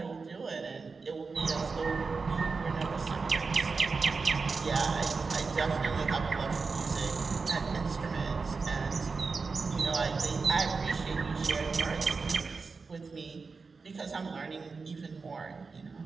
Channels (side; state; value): left; quieter; 4.5 dB